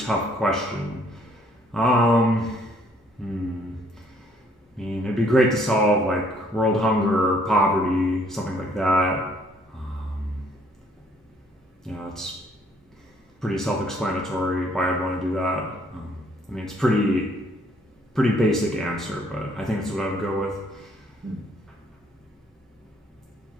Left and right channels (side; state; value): both; normal; correlation 0.64